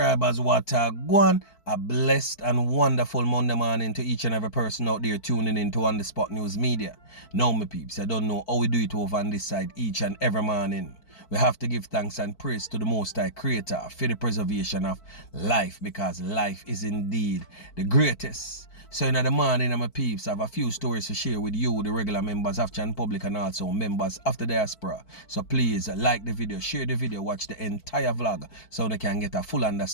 what go on. A blessed and wonderful Monday morning to each and every person out there tuning in to On The Spot News Media. Now, my peeps, I don't know how we do it over on this side each and every morning. We have to give thanks and praise to the Most High Creator for the preservation of life, because life is indeed the greatest. So in the morning, my peeps, I have a few stories to share with you, the regular members of Chan Public and also members of the diaspora. So please like the video, share the video, watch the entire vlog so they can get a full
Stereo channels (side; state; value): right; late; 4.5 ms